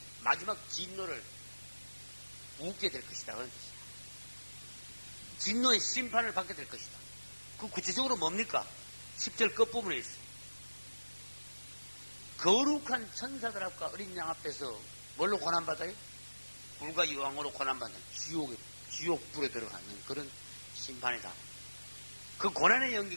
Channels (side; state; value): both; inverted; correlation -1.00